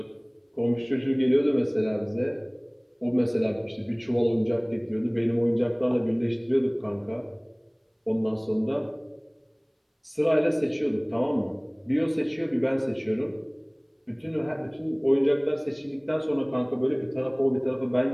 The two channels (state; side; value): identical; both; correlation 1.00